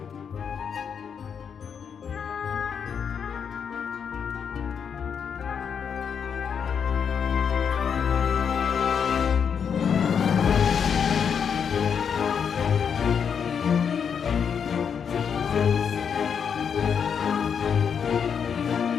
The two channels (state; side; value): quieter; right; 7.1 dB